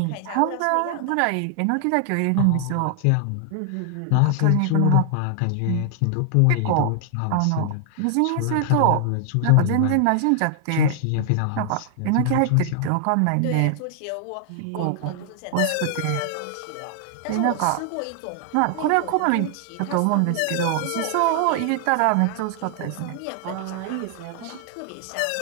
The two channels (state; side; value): different; both; correlation 0.00